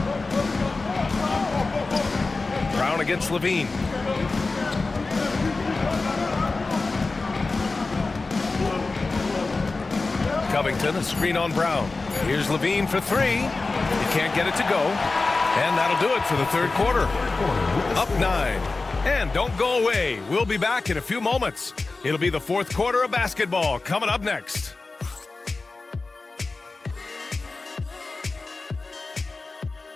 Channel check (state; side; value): quieter; right; 3.7 dB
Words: Brown against Levine. Covington, a screen on Brown. Here's Levine for 3. He can't get it to go. And that'll do it for the third quarter. Up 9. And don't go away. We'll be back in a few moments. It'll be the fourth quarter of basketball coming up next.